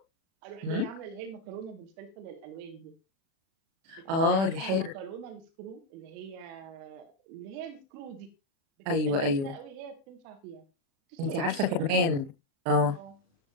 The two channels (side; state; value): left; late; 36 ms